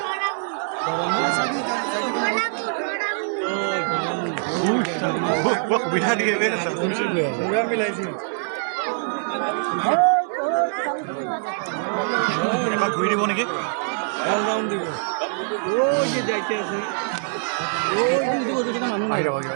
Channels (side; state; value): left; silent; digital silence